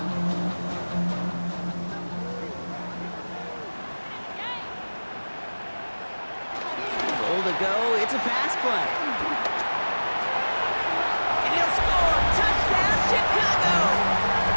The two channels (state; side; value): inverted; both; correlation -1.00